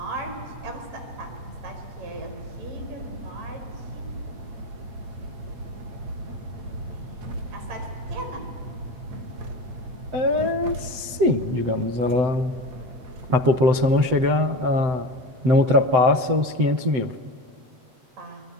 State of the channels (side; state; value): left; late; 7.9 ms